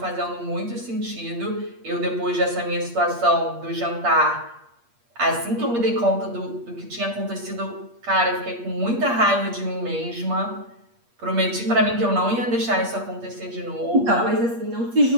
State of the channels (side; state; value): left; late; 8.5 ms